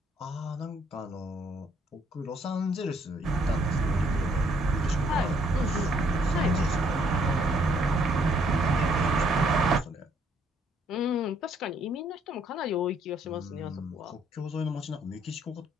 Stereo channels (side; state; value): both; normal; correlation 0.67